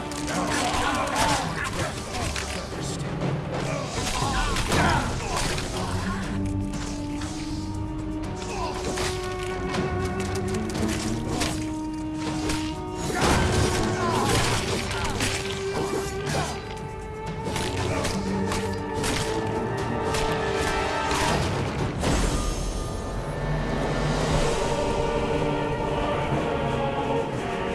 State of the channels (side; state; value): both; identical; correlation 1.00